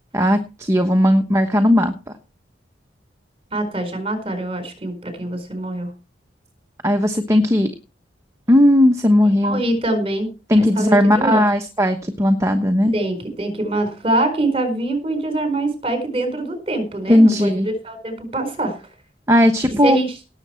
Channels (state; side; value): normal; both; correlation 0.78